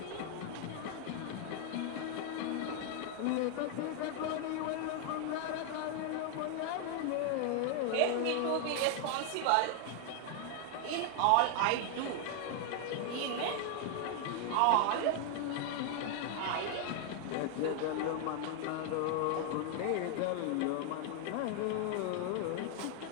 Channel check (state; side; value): different; both; correlation 0.00